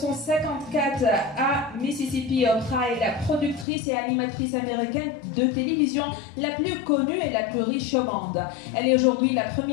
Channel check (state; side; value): drops out; right; at 3.7 s